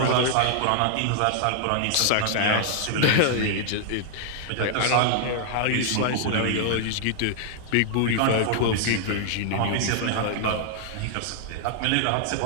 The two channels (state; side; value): different; both; correlation -0.01